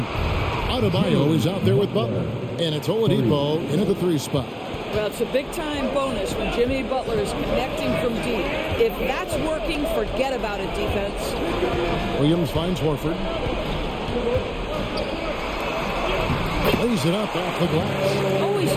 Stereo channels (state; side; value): identical; both; correlation 1.00